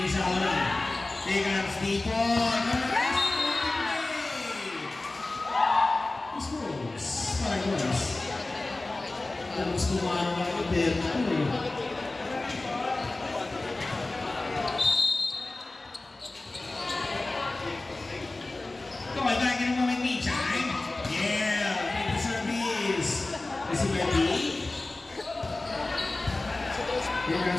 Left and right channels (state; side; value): quieter; right; 3.0 dB